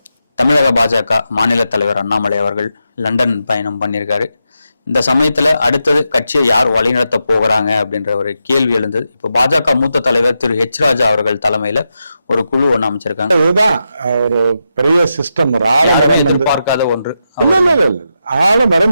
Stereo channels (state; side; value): inverted; both; correlation -0.86